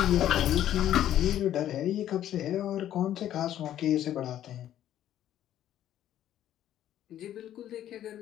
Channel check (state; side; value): quieter; right; 11.7 dB